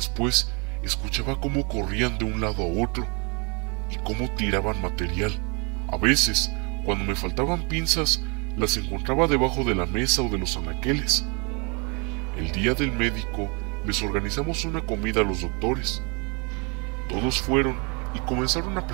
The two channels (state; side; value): quieter; left; 33.0 dB